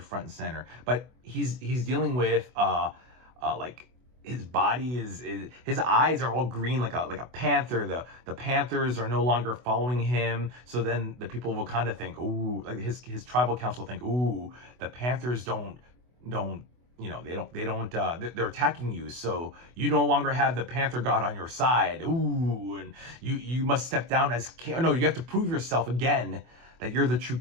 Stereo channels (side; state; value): left; late; 24 ms